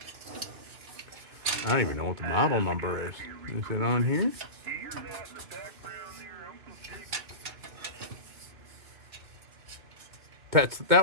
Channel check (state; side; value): late; left; 2.2 ms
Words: I don't even know what the model number is. Is it on here? That